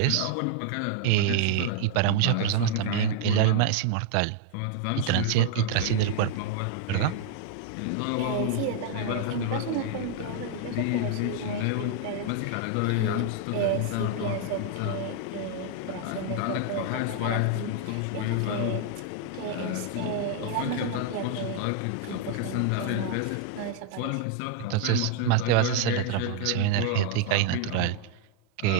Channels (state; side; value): different; both; correlation 0.00